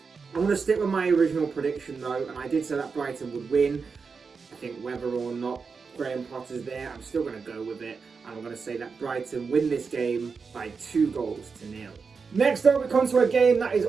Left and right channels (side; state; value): left; quieter; 5.2 dB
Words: I'm going to stick with my original prediction though, and I did say that Brighton would win. I think whether or not Graham Potter's there, I'm still going to go with it, and I'm going to say that Brighton win this game by 2-0. Next up, we come to a game that is